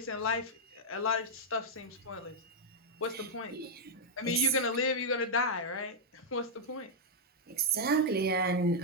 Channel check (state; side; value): normal; both; correlation -0.04